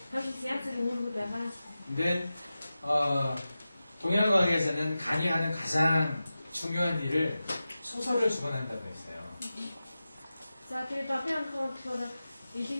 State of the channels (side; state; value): both; inverted; correlation -0.94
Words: 사실 양쪽이 모르다가 근데 동양과학에서는 간이 하는 가장 중요한 일을 소설을 주관한다고 했어요. за тэгээд одны анхаа болохоор